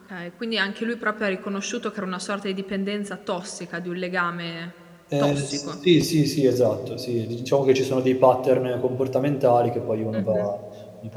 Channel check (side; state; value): both; identical; correlation 1.00